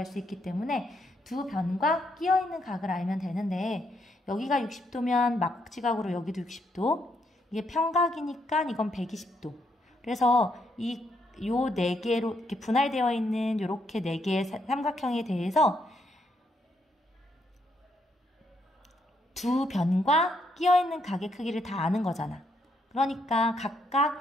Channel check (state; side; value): normal; both; correlation 0.76